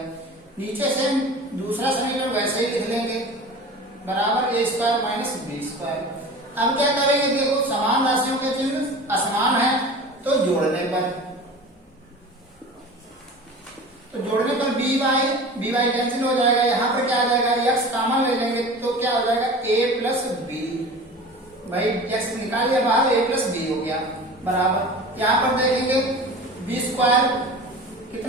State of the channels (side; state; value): both; normal; correlation 0.37